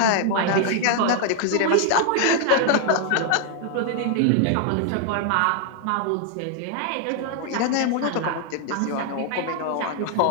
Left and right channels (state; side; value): different; both; correlation 0.00